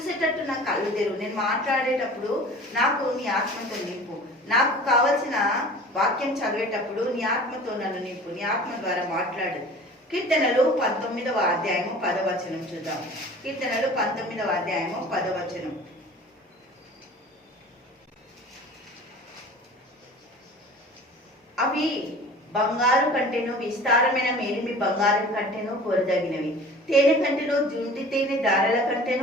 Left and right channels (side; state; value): both; normal; correlation 0.42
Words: నా కళ్ళు తెరువు. నేను మాట్లాడేటప్పుడు నాకు నీ ఆత్మతో నింపు. నాకు కావలసిన వాక్యం చదివేటప్పుడు నీ ఆత్మతో నన్ను నింపు. నీ ఆత్మ ద్వారా మాట్లాడు. కీర్తనలు 19వ అధ్యాయము 10వ వచనం చూద్దాం. కీర్తనలు 19వ అధ్యాయము 10వ వచనం. అవి బంగారు కంటేను విస్తారమైన మేలిమి బంగారం కంటేను కోరదగినవి, తేనె కంటేను జుంటి తేనె దారల